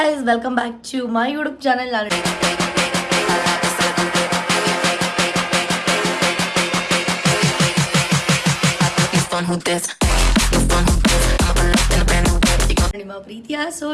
welcome back to my YouTube channel. ನಿಮ್ಮ ಪ್ರೀತಿಯ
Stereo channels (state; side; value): identical; both; correlation 1.00